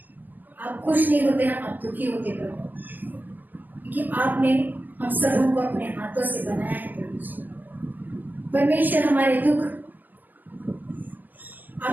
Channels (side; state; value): left; late; 0.085 ms